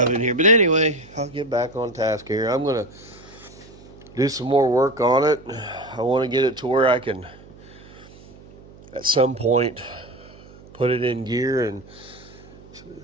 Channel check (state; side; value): noise; right; hum, 21 dB below the sound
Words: in here. But anyway, I'll get back on task here. I'm going to do some more work on it. I want to get it to where I can, at some point, put it in gear and